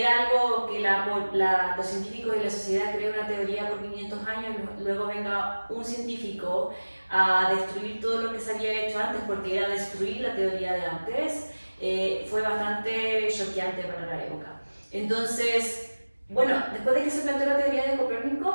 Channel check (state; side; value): inverted; both; correlation -1.00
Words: algo que los científicos y la sociedad creen una teoría por 500 años, luego venga un científico a destruir todo lo que se había hecho antes, porque era destruir la teoría de antes, fue bastante choqueante para la época. Entonces, bueno, después de que se planteó la teoría de